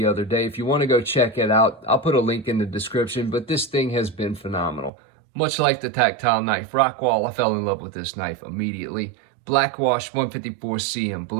other day. If you want to go check it out, I'll put a link in the description, but this thing has been phenomenal. Much like the Tactile Knife Rockwall, I fell in love with this knife immediately. Black wash 154 cm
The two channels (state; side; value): drops out; left; at 4.9 s